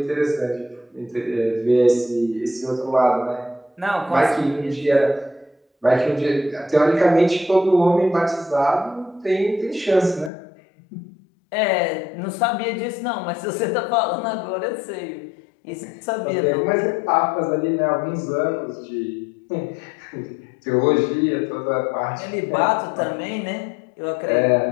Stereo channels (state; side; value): drops out; right; at 10.3 s